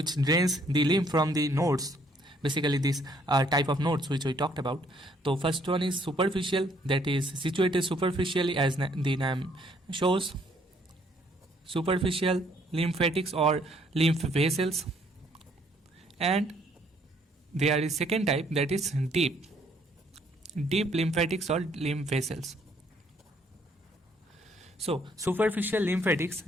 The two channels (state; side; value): normal; both; correlation 0.65